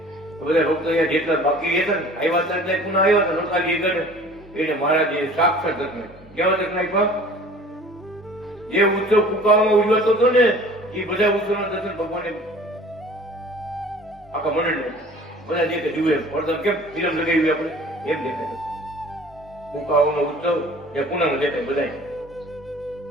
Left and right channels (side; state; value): both; normal; correlation 0.47